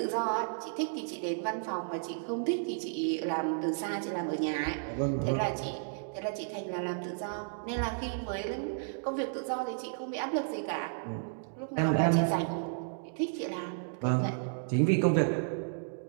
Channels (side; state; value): left; silent; digital silence